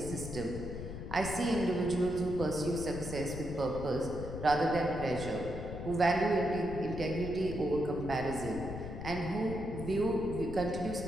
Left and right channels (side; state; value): left; noise; rumble, 8 dB below the sound